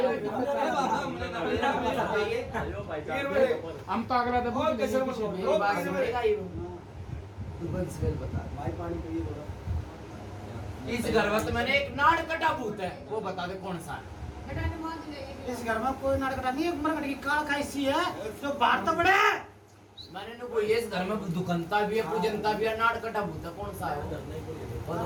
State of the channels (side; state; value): both; identical; correlation 1.00